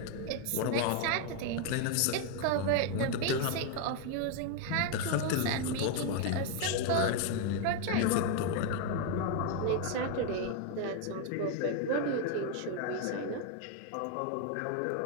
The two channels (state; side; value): different; both; correlation 0.00